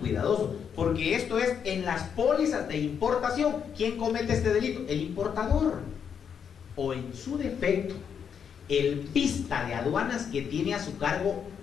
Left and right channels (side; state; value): right; quieter; 7.4 dB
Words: porque esto es en las pólizas de importación. ¿Quién comete este delito? El importador, o en su defecto, el pista de aduanas que tiene a su cargo